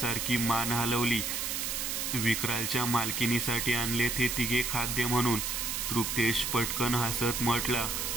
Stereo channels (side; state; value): right; noise; hiss, 1 dB below the sound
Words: मान हलवली. विक्रालच्या मालकिनीसाठी आणले ते तिघे खाद्य म्हणून. तृप्तेश पटकन हसत म्हटला.